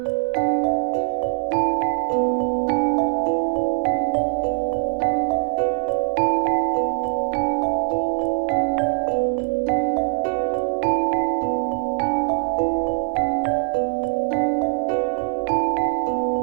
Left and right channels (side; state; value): left; silent; 64 dB below the other